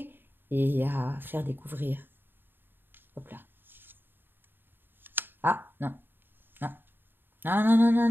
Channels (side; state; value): left; late; 0.096 ms